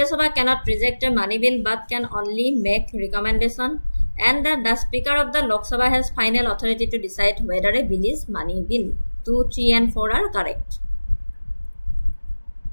Sabha cannot reject a money bill but can only make recommendation. And the Speaker of the Lok Sabha has final authority to decide whether a bill is money bill. 2, 3 and 4 are correct.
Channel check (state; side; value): inverted; both; correlation -1.00